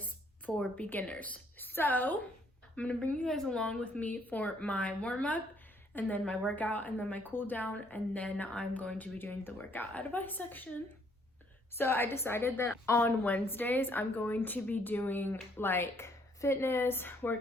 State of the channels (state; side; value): normal; both; correlation 0.66